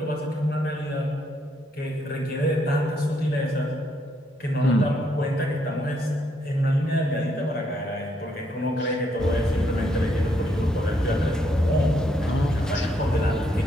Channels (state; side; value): normal; both; correlation 0.74